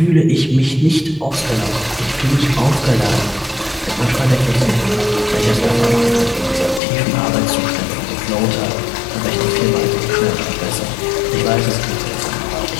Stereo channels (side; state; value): right; drops out; at 6.8 s